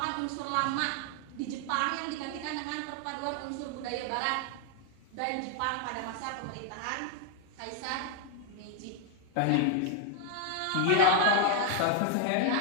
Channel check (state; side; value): different; both; correlation 0.00